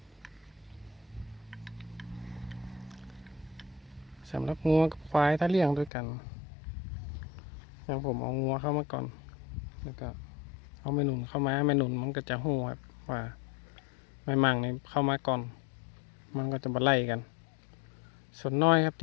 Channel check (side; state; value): right; drops out; at 5.9 s